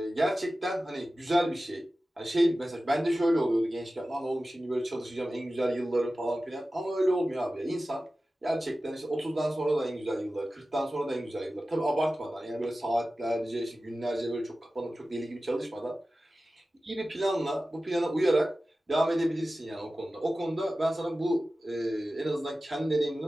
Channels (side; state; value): both; normal; correlation 0.95